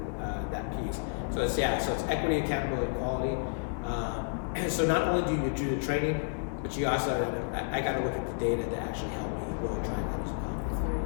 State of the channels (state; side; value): silent; right; digital silence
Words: that piece. So it's equity, accountability, and quality. And so not only do you do the training, but you also I got to look at the data to actually help me really track